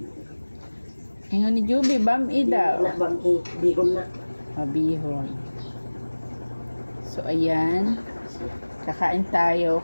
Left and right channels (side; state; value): both; inverted; correlation -1.00